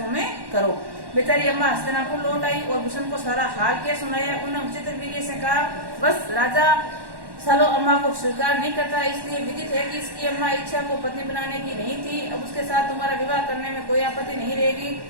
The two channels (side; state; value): left; late; 1.1 ms